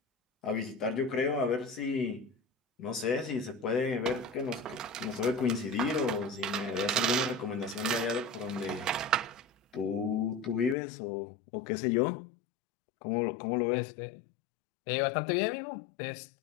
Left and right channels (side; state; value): right; drops out; at 10.8 s